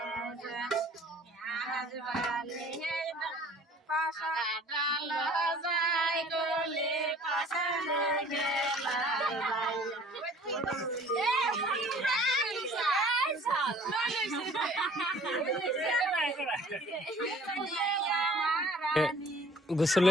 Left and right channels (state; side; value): normal; both; correlation 0.51